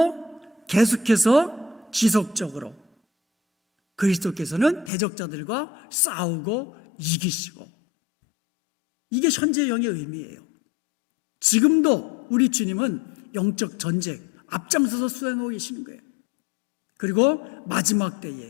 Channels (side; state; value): right; drops out; at 4.9 s